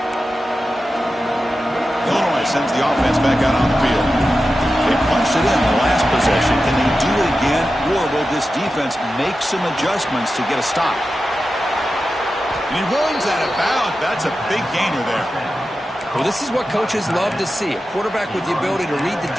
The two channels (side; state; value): both; normal; correlation 0.92